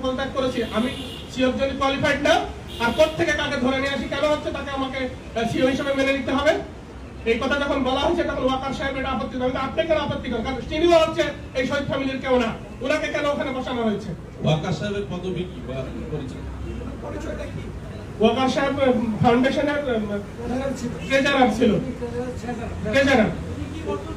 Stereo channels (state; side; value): identical; both; correlation 1.00